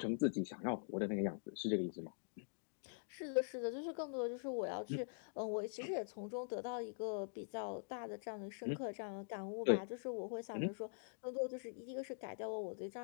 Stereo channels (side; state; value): right; silent; digital silence